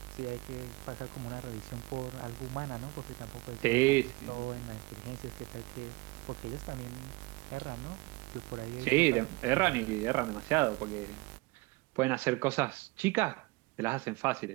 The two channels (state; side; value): quieter; left; 23.9 dB